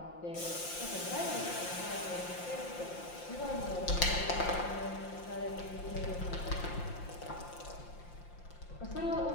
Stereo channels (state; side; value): late; right; 5.7 ms